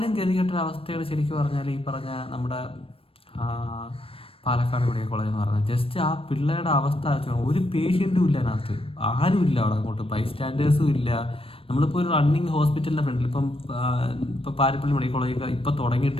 ഗതികെട്ടൊരവസ്ഥയാണ് ശരിക്കും പറഞ്ഞാൽ ഈ പറഞ്ഞ നമ്മുടെ പാലക്കാട് മെഡിക്കൽ കോളേജ് എന്ന് പറഞ്ഞാൽ. ജസ്റ്റ് ആ പിള്ളേരുടെ അവസ്ഥ ഒരു പേഷ്യൻറ്റും ഇല്ല അതിനകത്ത്, ആരും ഇല്ല അവിടെ. അങ്ങോട്ട് ബൈസ്റ്റാൻഡേഴ്സും ഇല്ല. നമ്മളിപ്പോൾ ഒരു റണ്ണിങ് ഹോസ്പിറ്റലിൻ്റെ ഫ്രണ്ടിൽ ഇപ്പോൾ പാരിപ്പള്ളി മെഡിക്കൽ കോളേജ് ഇപ്പോൾ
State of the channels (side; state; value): right; late; 0.27 ms